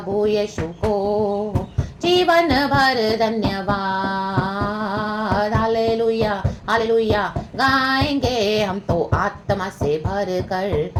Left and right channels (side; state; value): both; identical; correlation 1.00